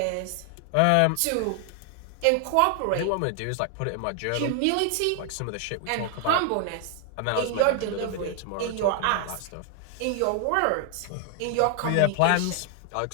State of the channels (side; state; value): both; different; correlation 0.00